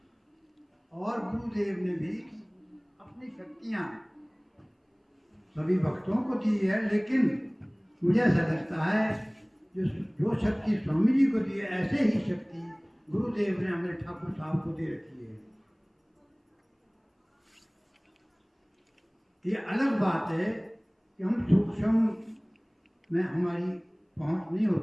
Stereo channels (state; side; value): identical; both; correlation 1.00